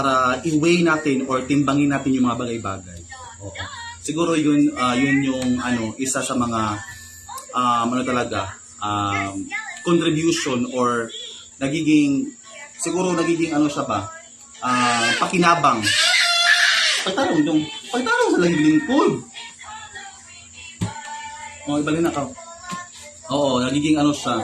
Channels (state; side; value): identical; both; correlation 1.00